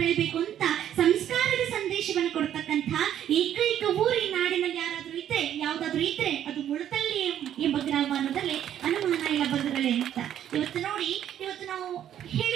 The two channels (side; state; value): left; quieter; 10.6 dB